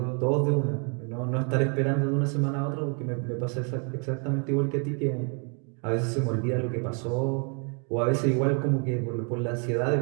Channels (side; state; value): left; quieter; 38.2 dB